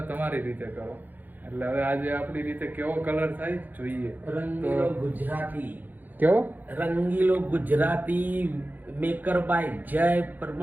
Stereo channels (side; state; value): left; late; 0.085 ms